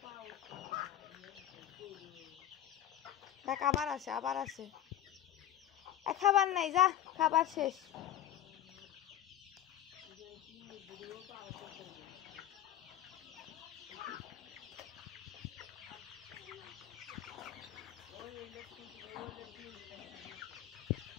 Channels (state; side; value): quieter; right; 11.9 dB